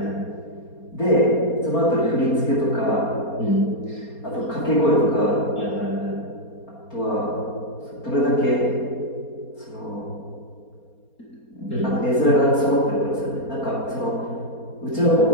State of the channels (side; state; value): right; late; 4.3 ms